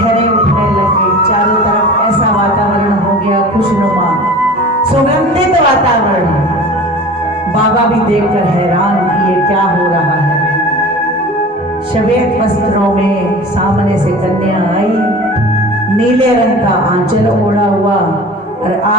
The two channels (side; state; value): both; normal; correlation 0.39